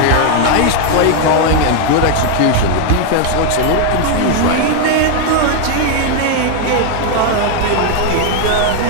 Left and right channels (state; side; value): different; both; correlation 0.01